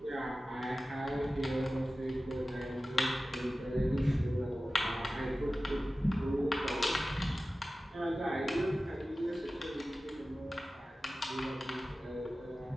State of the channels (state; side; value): normal; both; correlation 0.95